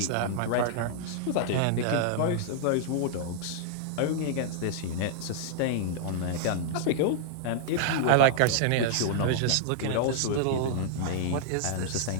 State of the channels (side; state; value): both; different; correlation -0.01